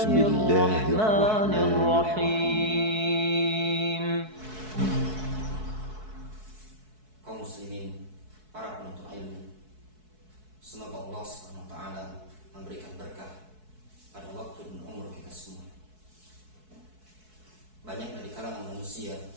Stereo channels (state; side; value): late; left; 4.6 ms